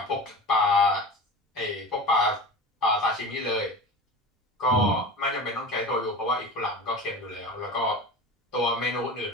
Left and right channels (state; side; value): normal; both; correlation 0.32